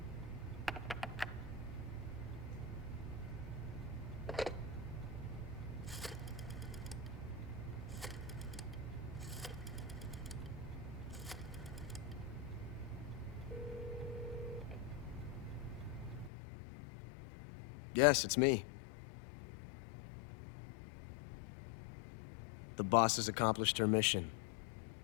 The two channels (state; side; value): drops out; right; at 16.3 s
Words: Yes, it's me. The boss has accomplished her mission.